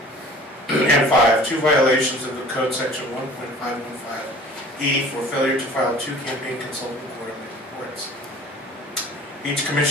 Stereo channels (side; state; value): both; normal; correlation 0.47